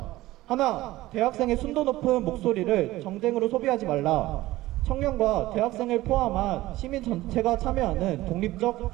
하나, 대학생의 순도 높은 목소리를 정쟁으로 소비하지 말라. 청년과 대학생을 포함한 시민 전체가 참여하는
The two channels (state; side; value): quieter; left; 17.2 dB